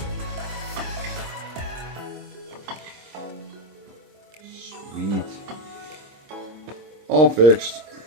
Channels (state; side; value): late; left; 25 ms